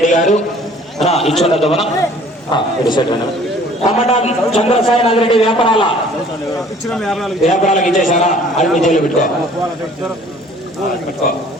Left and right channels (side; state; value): both; normal; correlation 0.53